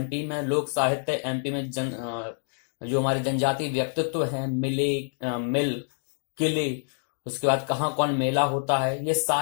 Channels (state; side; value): silent; right; digital silence